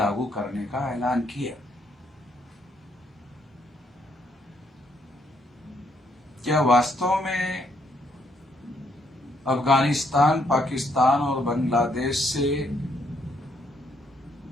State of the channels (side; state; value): both; normal; correlation 0.72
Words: करने का ऐलान किया। क्या वास्तव में अफगानिस्तान, पाकिस्तान और बांग्लादेश से